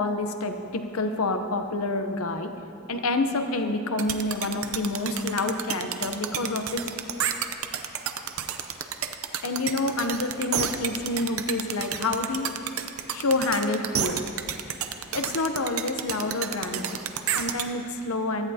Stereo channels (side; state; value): both; normal; correlation 0.06